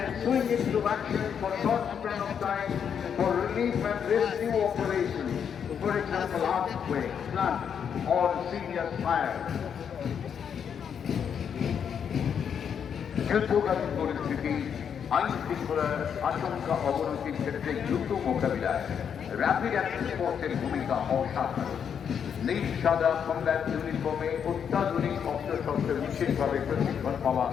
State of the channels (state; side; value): quieter; right; 7.7 dB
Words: swing into action for short span of time for relief and rescue operations. For example, earthquake, flood, or serious fire. যুদ্ধকালীন পরিস্থিতি আইন শৃঙ্খলার আশঙ্কা অবনতির ক্ষেত্রে দ্রুত মোকাবিলায় rapid action ফোর্সের ভূমিকা অসাধারণ। নীল সাদা কমব্যাট ইউনিফর্মে অত্যাধুনিক অস্ত্রশস্ত্রে বিশেষভাবে প্রশিক্ষণ পাওয়া